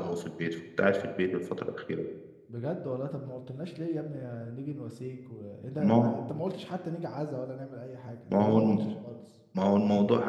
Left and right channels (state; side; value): identical; both; correlation 1.00